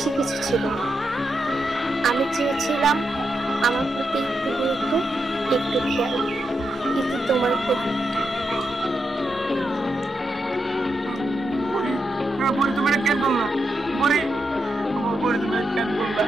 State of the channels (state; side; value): normal; both; correlation 0.84